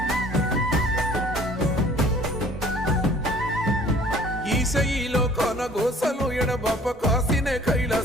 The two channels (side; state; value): both; normal; correlation 0.53